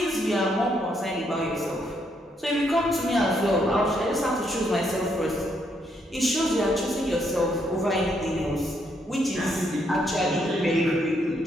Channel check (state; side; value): normal; both; correlation 0.75